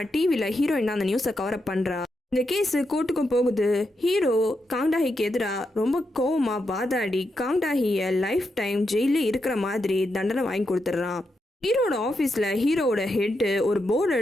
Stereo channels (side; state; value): both; normal; correlation 0.84